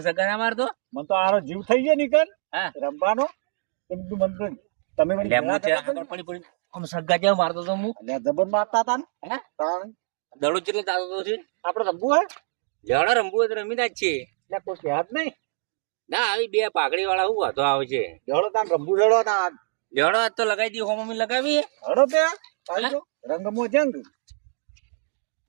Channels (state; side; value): silent; left; digital silence